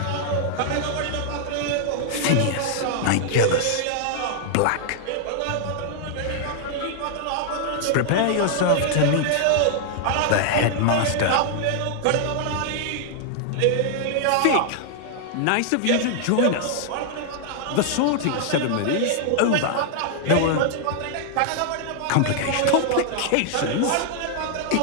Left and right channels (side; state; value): both; different; correlation 0.00